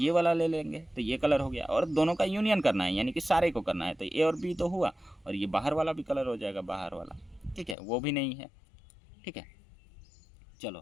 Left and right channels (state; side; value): drops out; right; at 7.8 s